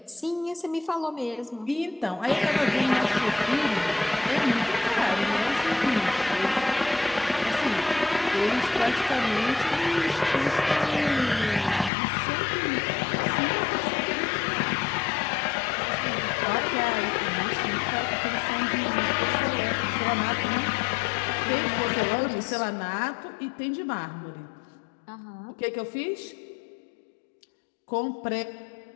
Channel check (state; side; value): drops out; right; at 11.9 s